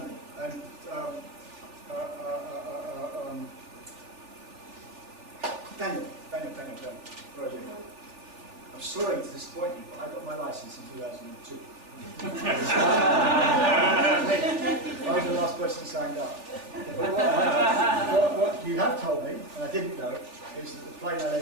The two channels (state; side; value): late; left; 3.4 ms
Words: And Daniel, where are you? I'm sorry to disappoint you, but I got my license in 2002. I was the last person signed up. But what you have told me, and I didn't know, is that the plane I